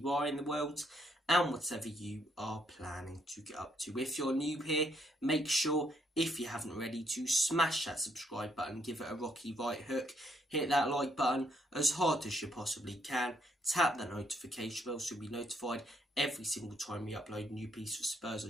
are in the world and whatever you are planning to get up to. If you're new here, make sure, if you haven't already, to smash that subscribe button, give it a rocky right hook, hit that like button as hard as you possibly can, tap that notification bell so you'll be notified every single time we upload a new piece of Spurs or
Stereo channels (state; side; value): normal; both; correlation 0.72